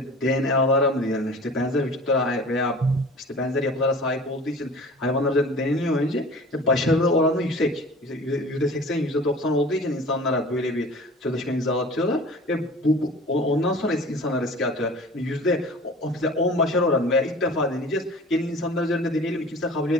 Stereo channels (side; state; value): both; normal; correlation 0.42